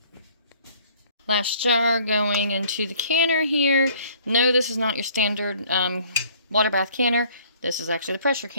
Last jar going into the canner here. No, this is not your standard water bath canner. This is actually the pressure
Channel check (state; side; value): inverted; both; correlation -0.57